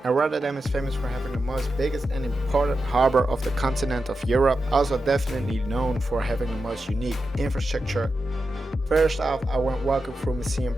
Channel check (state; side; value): normal; both; correlation 0.90